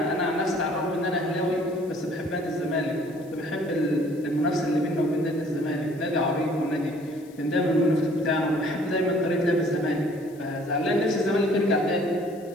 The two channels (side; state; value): left; noise; hiss, 27 dB below the sound